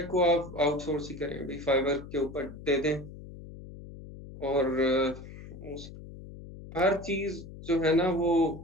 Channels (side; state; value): left; noise; hum, 14 dB below the sound